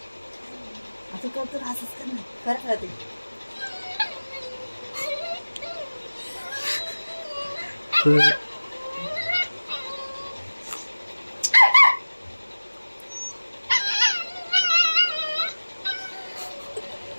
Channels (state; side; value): inverted; both; correlation -1.00